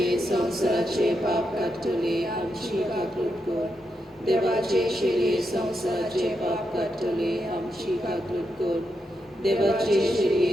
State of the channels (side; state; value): both; normal; correlation 0.84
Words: संवसाराचे पाप काडटले आमची काकूट कर. देवाचे शिरे संवसाराचे पाप काडटले आमची काकूट कर. देवाचे